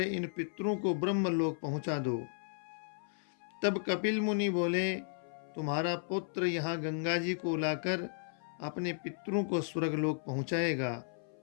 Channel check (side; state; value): right; silent; 55 dB below the other